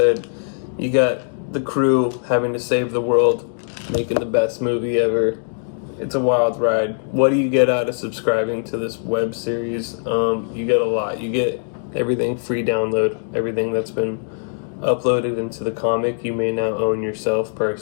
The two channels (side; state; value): right; silent; digital silence